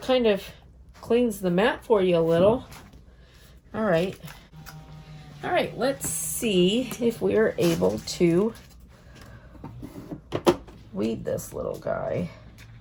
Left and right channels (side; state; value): both; identical; correlation 1.00